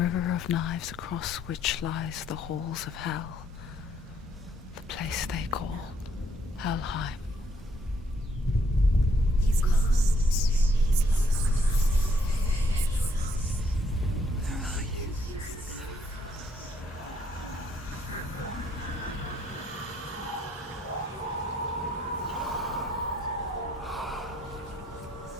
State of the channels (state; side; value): normal; both; correlation 0.69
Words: of knives across which lies the halls of hell. The place they call Helheim. He's lost. He's lost. Where are you?